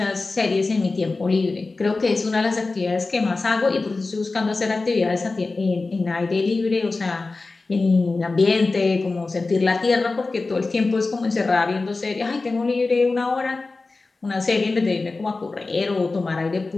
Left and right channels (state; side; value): quieter; right; 3.6 dB